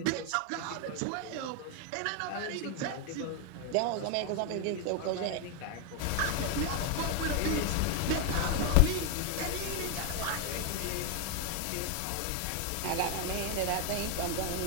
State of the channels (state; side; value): different; both; correlation 0.01